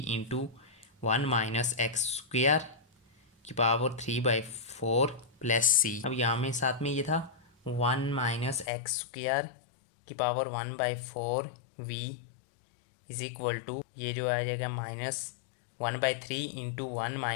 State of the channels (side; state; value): right; drops out; at 8.7 s